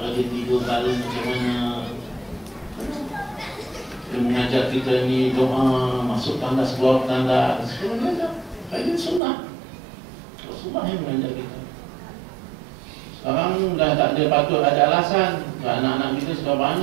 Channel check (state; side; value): drops out; left; at 9.2 s